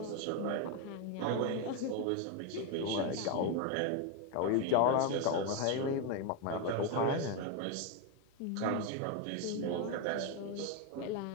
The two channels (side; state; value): both; different; correlation 0.02